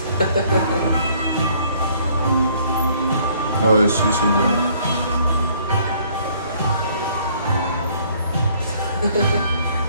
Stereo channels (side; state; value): both; inverted; correlation -0.61